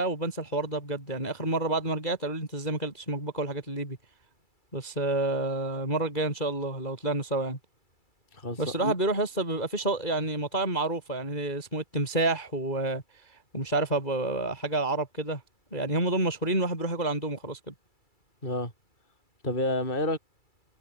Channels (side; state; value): right; late; 2.3 ms